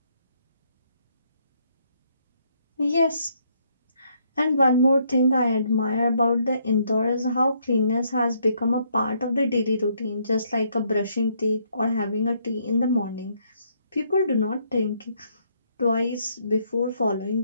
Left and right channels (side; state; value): both; inverted; correlation -0.71